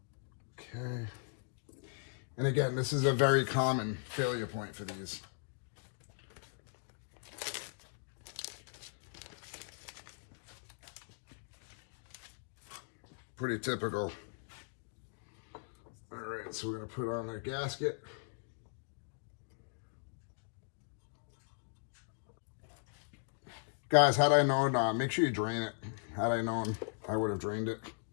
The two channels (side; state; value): right; silent; digital silence